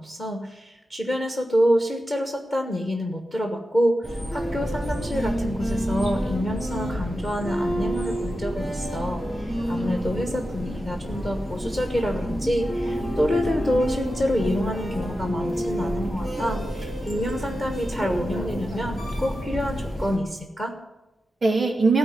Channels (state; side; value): normal; both; correlation 0.91